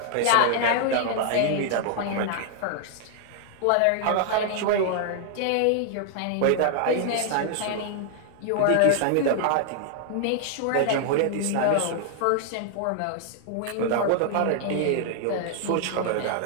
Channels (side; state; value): both; different; correlation -0.01